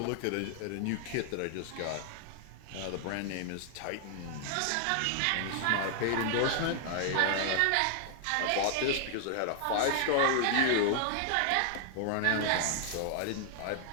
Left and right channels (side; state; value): both; different; correlation 0.00